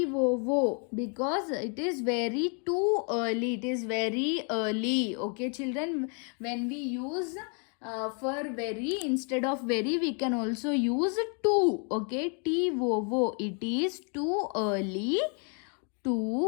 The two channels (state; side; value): quieter; right; 39.5 dB